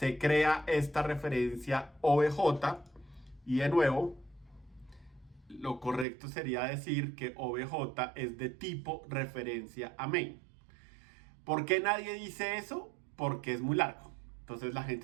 crea esta referencia obj. Y de nuevo, lo correcto sería decir que obj es de tipo referencia a main. ¿Por qué nadie dice eso? Porque es muy largo. Entonces la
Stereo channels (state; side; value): drops out; left; at 6.1 s